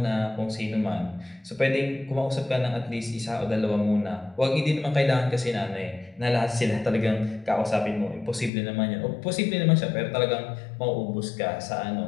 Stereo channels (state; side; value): drops out; right; at 8.5 s